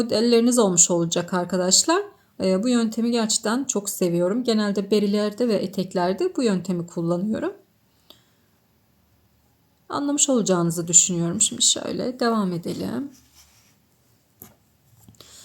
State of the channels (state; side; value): identical; both; correlation 1.00